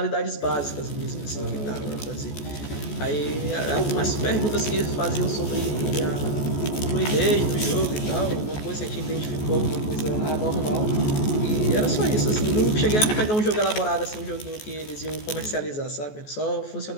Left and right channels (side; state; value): right; late; 14 ms